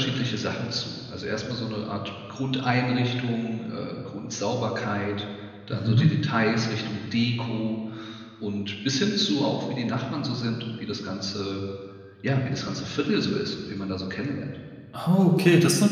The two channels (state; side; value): identical; both; correlation 1.00